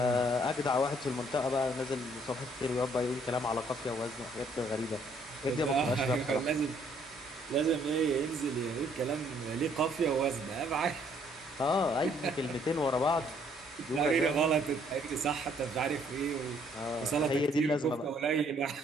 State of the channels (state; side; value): normal; both; correlation 0.65